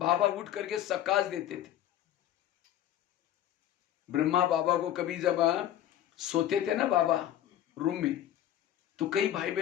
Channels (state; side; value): quieter; right; 11.7 dB